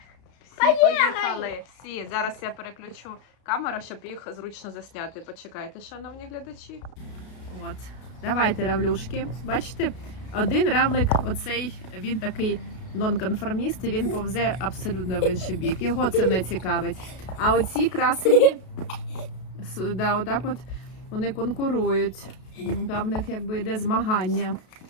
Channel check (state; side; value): late; right; 33 ms